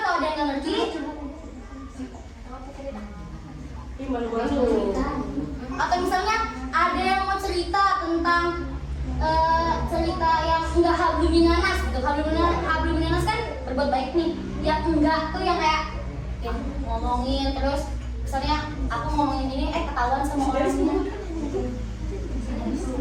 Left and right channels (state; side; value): identical; both; correlation 1.00